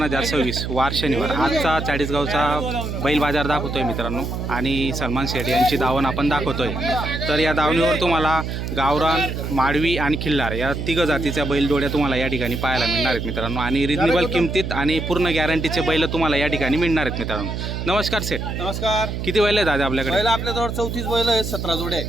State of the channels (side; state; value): right; noise; hum, 4 dB below the sound